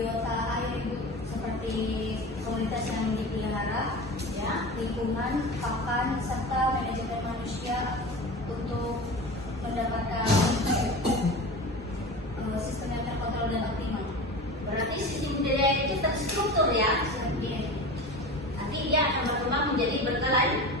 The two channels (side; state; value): both; normal; correlation 0.31